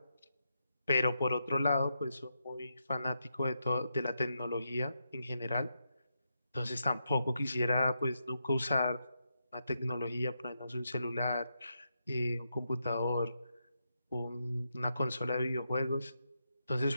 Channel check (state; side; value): inverted; both; correlation -0.84